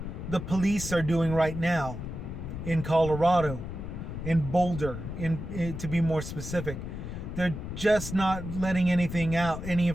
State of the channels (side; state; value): left; noise; rumble, 7 dB below the sound